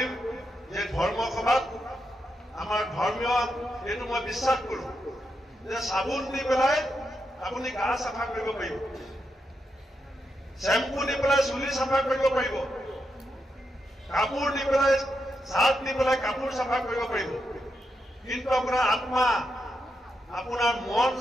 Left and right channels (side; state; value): both; normal; correlation 0.84